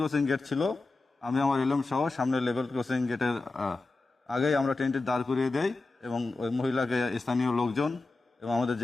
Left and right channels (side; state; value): right; quieter; 3.4 dB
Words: গেট ছিল, আমি আমার এলএম সহ সামনে লেভেল ক্রসিং গেটের আগেই আমরা ট্রেনটি দাঁড় করিয়ে দেই এবং ওই মহিলাকে স্থানীয় লোকজন এবং আমাদের